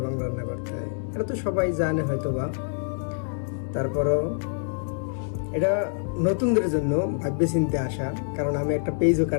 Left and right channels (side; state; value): right; silent; 61 dB below the other